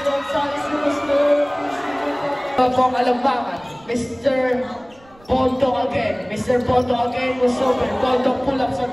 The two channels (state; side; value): noise; right; rumble, 28 dB below the sound